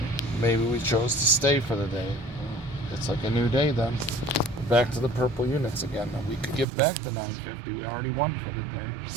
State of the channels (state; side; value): drops out; left; at 6.7 s